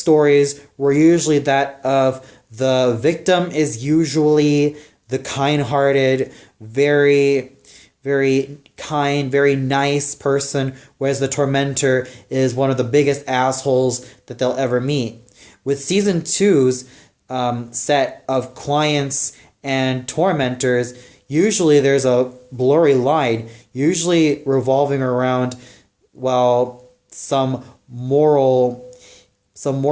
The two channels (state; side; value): identical; both; correlation 1.00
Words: were usually that of the victim is usually the kind-hearted, very, very kind, very nice person, whereas the tormentor is one of the biggest assholes that they'll ever meet. With season two's set of clients and tormentors, usually there's a blurry line, usually revolving around, well, some moral